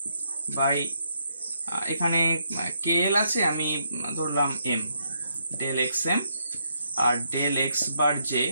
by এখানে কে এল আছে, আমি ধরলাম এম, ডেল এক্স এম, আর del x bar j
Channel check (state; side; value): inverted; both; correlation -0.76